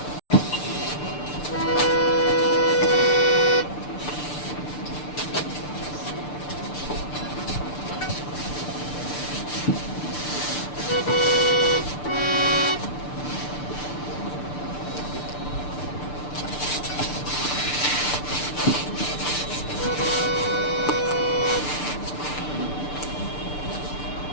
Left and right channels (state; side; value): late; right; 6.8 ms